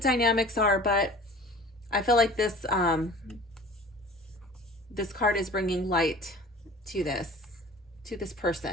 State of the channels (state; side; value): normal; both; correlation 0.43